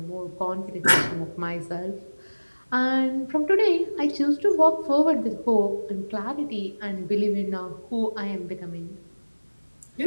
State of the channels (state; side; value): inverted; both; correlation -1.00